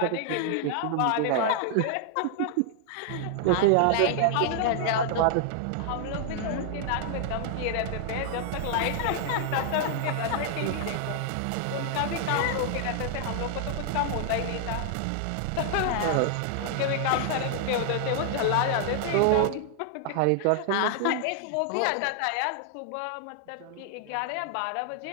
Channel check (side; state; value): both; different; correlation 0.00